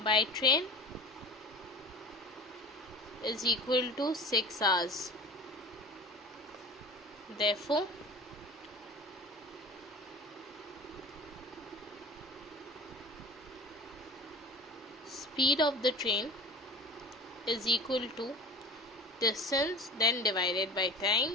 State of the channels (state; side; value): normal; both; correlation 0.38